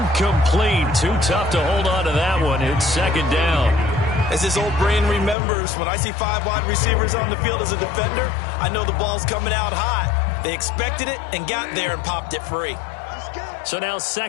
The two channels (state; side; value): drops out; right; at 5.4 s